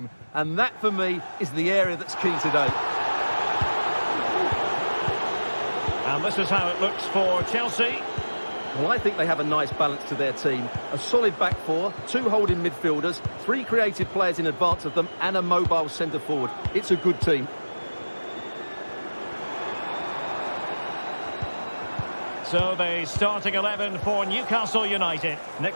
And that, for me, is the area that's key today. And this is how it looks for Chelsea. Well, I think they have a nice balance to their team. A solid back four, 2 holding midfielders, 3 creative players in advance of them, and a mobile centre-forward. It's a good team. So the starting 11 for Newcastle United. Nick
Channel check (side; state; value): both; inverted; correlation -1.00